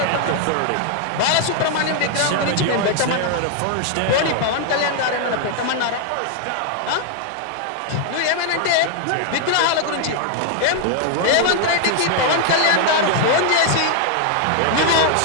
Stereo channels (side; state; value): both; different; correlation 0.00